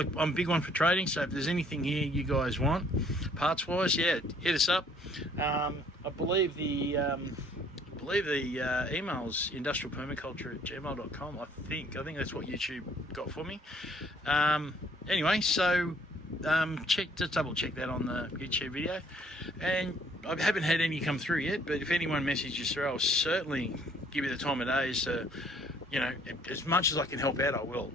I'm a big one for trading, so if there's anything here you guys want, parts-wise, hit us up. I believe the email's industrialpermaculture@gmail.com. I think that's what YouTube got for me. Anyway, so just double check that on the YouTube video. And I haven't had any come through yet, but if anyone messages through, I'll certainly give you the time of day. So, as much as I can help out, I will.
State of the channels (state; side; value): normal; both; correlation 0.61